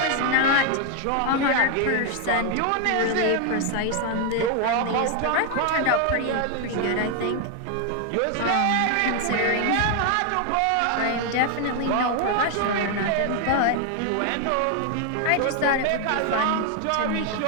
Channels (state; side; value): different; both; correlation 0.00